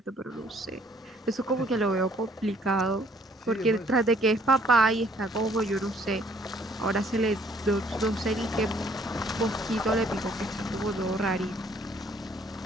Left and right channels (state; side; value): normal; both; correlation 0.62